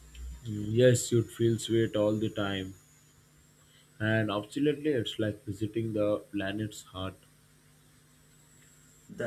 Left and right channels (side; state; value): both; identical; correlation 1.00